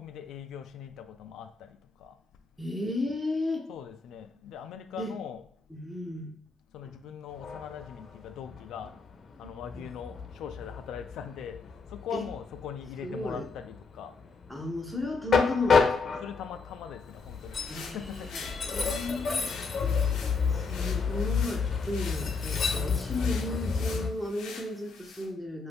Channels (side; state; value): right; quieter; 4.4 dB